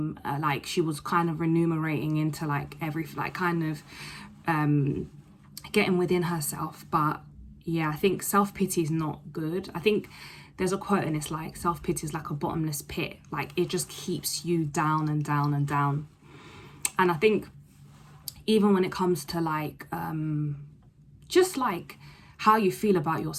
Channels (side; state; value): both; identical; correlation 1.00